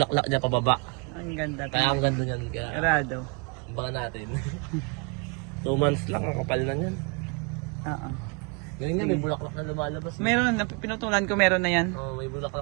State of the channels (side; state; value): left; quieter; 31.9 dB